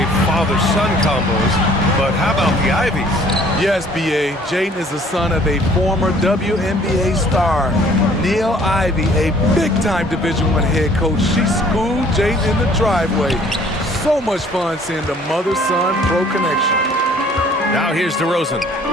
father-son combos, but how about the Ivies? Yes, B.A. Jaden is the son of a former WNBA star, Neil Ivy, a big-time Division I head coach. She schooled Jaden in the driveway. So much fun seeing the mother-son pro connection. Now here's DeRozan.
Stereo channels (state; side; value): normal; both; correlation 0.56